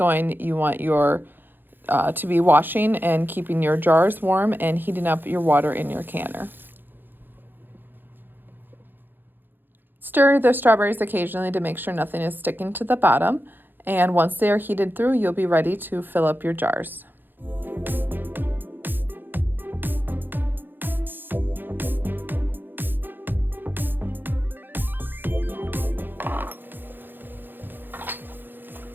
you want your to be washing and keeping your jars warm and heating up your water in your canner. Stir the strawberries occasionally to make sure nothing is sticking to the bottom. And once they are heated through, you'll be ready to fill up your jars.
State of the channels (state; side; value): late; left; 0.094 ms